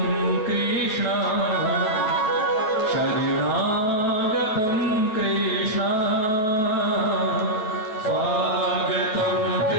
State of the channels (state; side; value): late; right; 9.1 ms